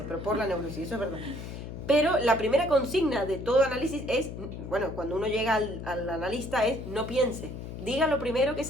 pero por la neurosis, eso es verdad. Pero la primera consigna de todo análisis es, bueno, cuando uno llega al analista es no piense, diga lo primero que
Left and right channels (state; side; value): noise; left; hum, 9 dB below the sound